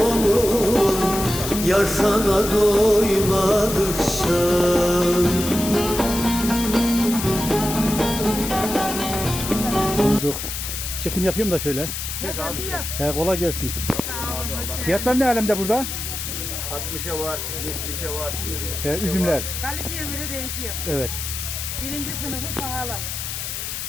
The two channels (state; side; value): noise; left; hiss, 5 dB below the sound